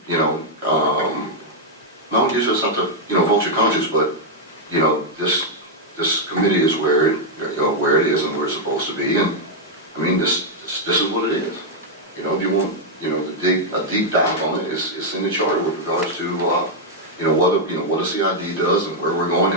No, you just have to vote your conscience, but this committee is where it is and where it's supposed to be, and this is what it is. If you want to dig a deep dive on it, it's in the charter with regards to what the CID does and where we're going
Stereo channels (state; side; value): normal; both; correlation -0.02